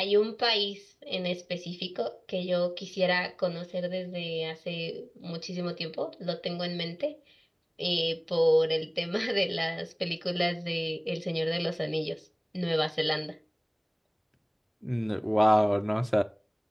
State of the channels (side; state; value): both; identical; correlation 1.00